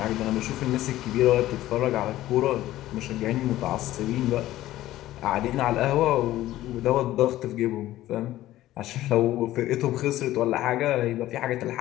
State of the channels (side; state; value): right; quieter; 14.9 dB